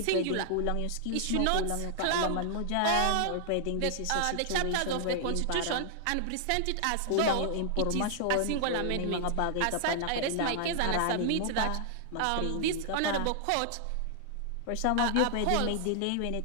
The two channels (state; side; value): different; both; correlation -0.01